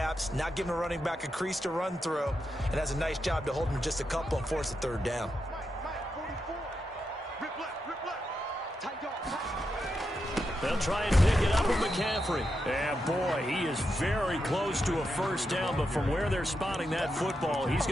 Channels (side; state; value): both; normal; correlation 0.85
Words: not giving a running back a crease to run through, and that's a nice job to hold him just a couple and force a 3rd down. They'll try and pick it up with McCaffrey. And, boy, he is very close to a 1st down, but from where they're spotting that football, he's